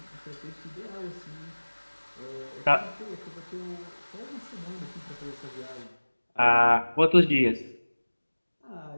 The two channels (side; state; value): both; inverted; correlation -1.00